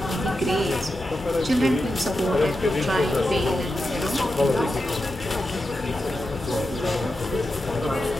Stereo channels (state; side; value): normal; both; correlation 0.89